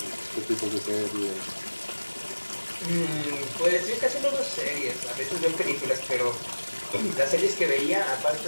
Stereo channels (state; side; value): inverted; both; correlation -1.00